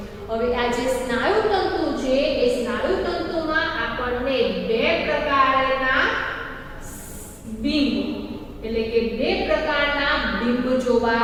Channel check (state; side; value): identical; both; correlation 1.00